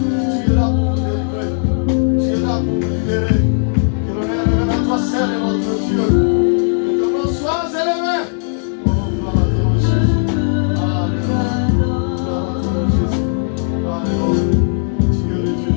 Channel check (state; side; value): silent; right; digital silence